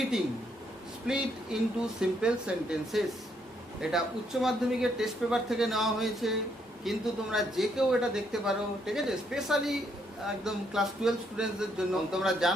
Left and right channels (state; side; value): normal; both; correlation 0.73